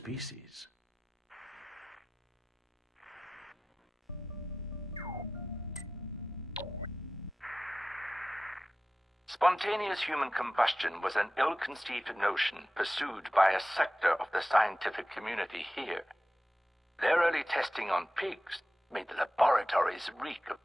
Spontaneous human combustion was an ill-conceived notion pursued by a sector of the scientific community here. Their early testing on pigs made the laboratories reek of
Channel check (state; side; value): normal; both; correlation 0.94